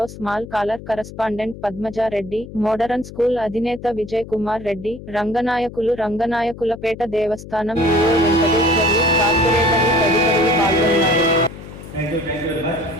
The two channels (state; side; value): noise; left; hum, 14 dB below the sound